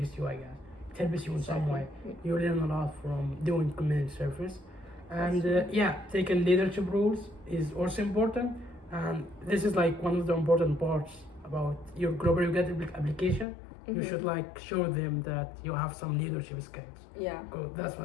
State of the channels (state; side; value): drops out; right; at 13.5 s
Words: you, I guess. It helps you in some way. You learn a lot from doing community service. And That's yeah, taking leadership roles is also important. And this is like one of the important parts about your Global UGRAD application. You Mhm. should like show them that you have some leadership skills. Yeah. Good, that's